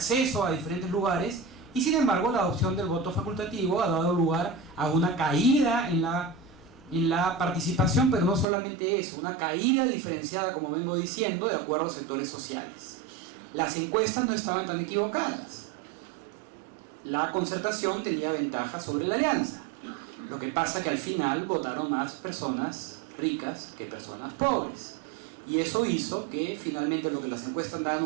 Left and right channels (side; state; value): left; drops out; at 8.5 s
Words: a diferentes lugares, y sin embargo la adopción del voto facultativo ha dado lugar a una caída en la participación, pero no solamente eso, una caída diferenciada, como vengo diciendo, de acuerdo a sectores sociales. Las encuestas no estaban tan equivocadas. La concertación tenía ventaja sobre la alianza. Lo que pasa que al final votaron más personas ricas que personas pobres. Y eso hizo que finalmente lo que las encuestas daban